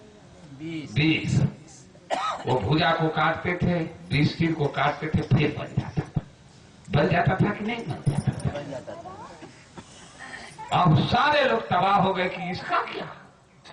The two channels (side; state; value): both; identical; correlation 1.00